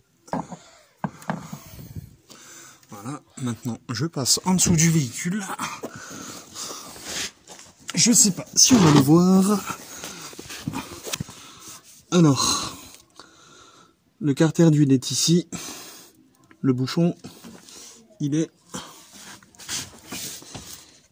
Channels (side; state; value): both; identical; correlation 1.00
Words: Voilà, maintenant je passe en dessous du véhicule. Je sais pas si on va le voir. Alors, le carter d'huile est ici. Le bouchon, il est